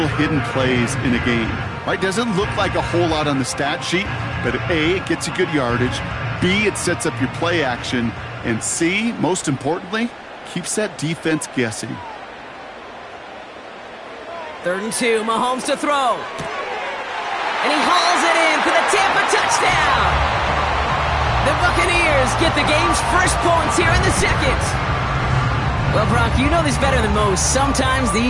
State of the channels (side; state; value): both; identical; correlation 1.00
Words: hidden plays in a game, right? Doesn't look like a whole lot on the stat sheet, but A, it gets you good yardage. B, it sets up your play action. And C, most importantly, keeps that defense guessing. 3rd and 2, Mahomes to throw. And he hauls it in for the Tampa touchdown. The Buccaneers get the game's first points here in the second. Well, Brock, you know this better than most. Sometimes